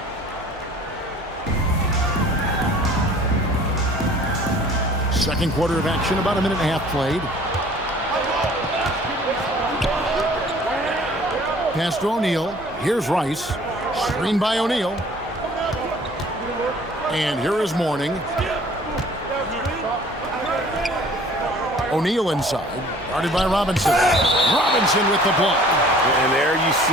Second quarter of action, about a minute and a half played. Pass to O'Neal. Here's Rice. Screen by O'Neal. And here is Mourning. O'Neal inside. Guarded by Robinson. Robinson with the block. And there you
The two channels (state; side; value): normal; both; correlation 0.51